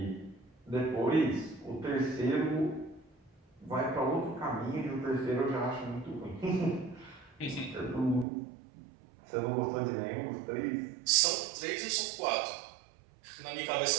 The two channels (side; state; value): left; drops out; at 8.2 s